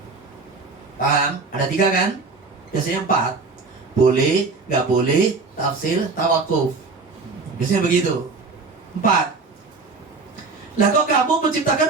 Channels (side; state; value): left; quieter; 4.1 dB